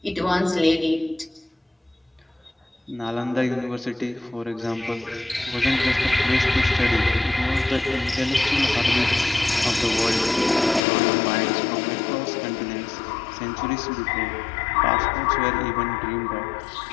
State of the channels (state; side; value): drops out; right; at 10.8 s